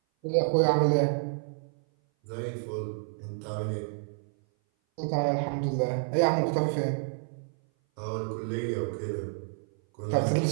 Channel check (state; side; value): silent; left; 57 dB below the other